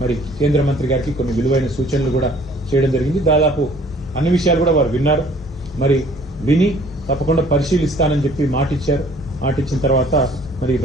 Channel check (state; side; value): normal; both; correlation 0.55